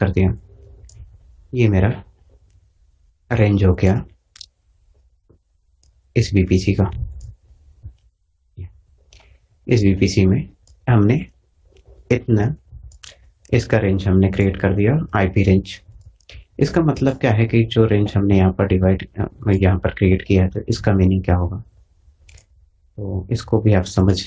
दिया, ये मेरा रेंज हो गया इस वीपीसी का। इस वीपीसी में हमने इतना, इसका रेंज हमने क्रिएट कर दिया आईपी रेंज। इसका मतलब क्या है कि जो रेंज हमने यहाँ पर यहाँ पर क्रिएट किया है, तो इसका मीनिंग क्या होगा, तो इसको भी आप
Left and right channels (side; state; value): both; identical; correlation 1.00